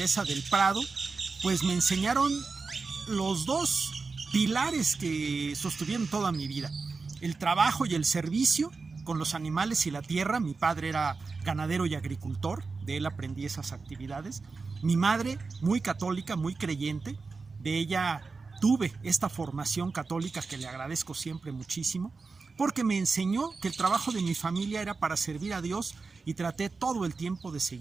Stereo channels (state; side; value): quieter; left; 4.3 dB